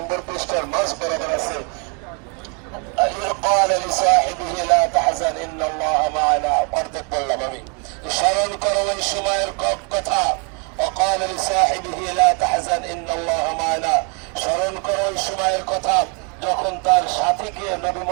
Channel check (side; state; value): left; quieter; 36.0 dB